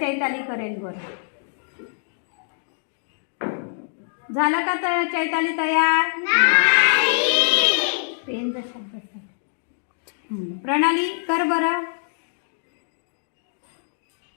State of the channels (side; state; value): right; silent; digital silence